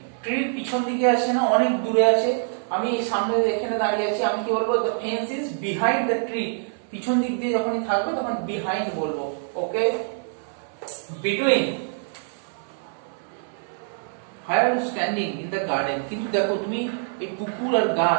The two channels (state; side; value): silent; left; 56 dB below the other